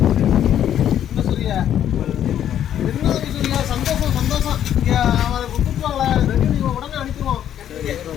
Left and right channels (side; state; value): right; quieter; 10.4 dB